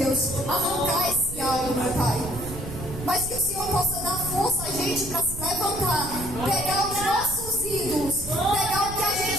arrancar esse algo, meu Pai, mas que o Senhor possa dar força a gente para se levantar, pegar os nossos ídolos, pegar o que a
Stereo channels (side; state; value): right; noise; rumble, 10 dB below the sound